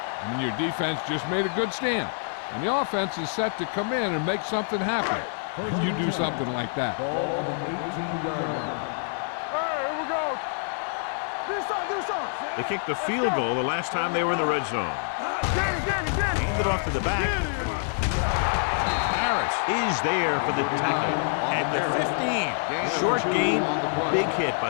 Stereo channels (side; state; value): right; silent; digital silence